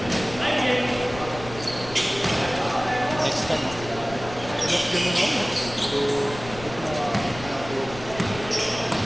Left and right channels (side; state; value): left; noise; rumble, 14 dB below the sound